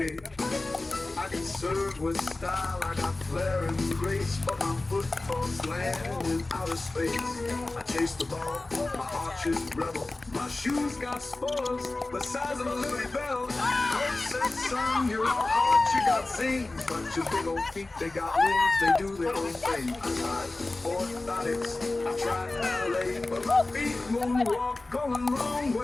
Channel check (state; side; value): quieter; right; 3.1 dB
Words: I can serve with style, I got flair and grace, but my football's land in outer space. I chase the ball, my arches rebel. My shoes got spoilers the size of a Liberty Bell. Coach said, son, you're all hard, you got zings, but your big old feet, they got wings, they do their own thing. I tried orthotics, I tried ballet, but my feet moonwalk going wrong